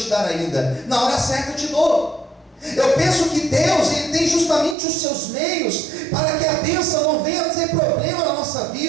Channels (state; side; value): drops out; left; at 4.8 s